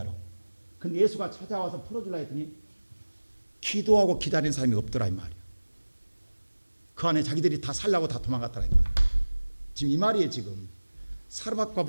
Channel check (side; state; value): both; inverted; correlation -1.00